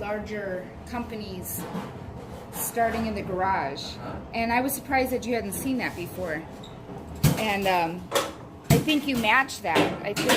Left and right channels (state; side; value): identical; both; correlation 1.00